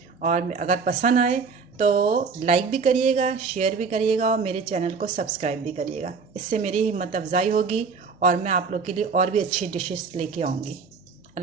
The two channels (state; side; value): quieter; left; 5.1 dB